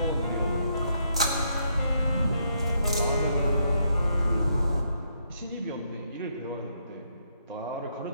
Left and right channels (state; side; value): inverted; both; correlation -0.75